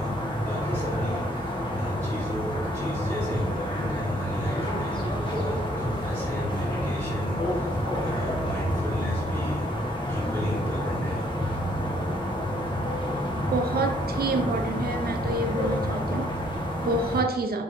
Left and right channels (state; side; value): normal; both; correlation 0.65